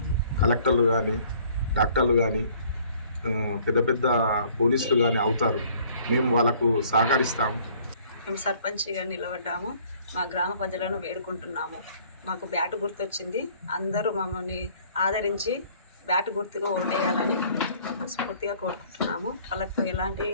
కలెక్టర్లు కానీ, డాక్టర్లు కానీ, పెద్ద పెద్ద పోలీసులు కానీ అవుతారు. మేము వాళ్ళకు సహకరిస్తాము. మేము సర్పంచ్గా నిలబడ్డాము. మా గ్రామ ప్రజలను వేడుకుంటున్నాము, మాకు బ్యాటు గుర్తొచ్చింది, అందరూ మమ్మల్ని ఆదరించి బ్యాటు గుర్తుగా ఓటేయాలని స్ఫూర్తిగా కోరుకుంటున్నాము. వాళ్ళకు ఎలాంటి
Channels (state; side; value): inverted; both; correlation -0.57